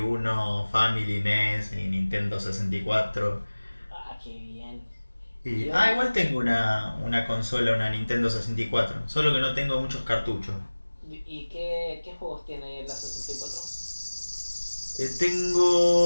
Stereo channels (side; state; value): both; inverted; correlation -1.00